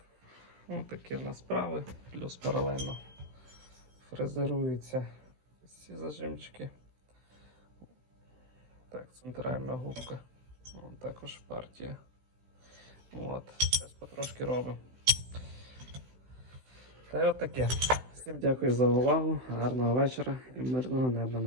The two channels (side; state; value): left; late; 16 ms